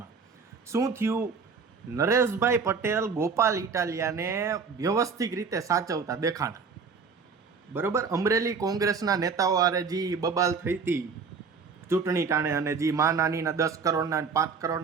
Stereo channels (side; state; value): left; quieter; 5.3 dB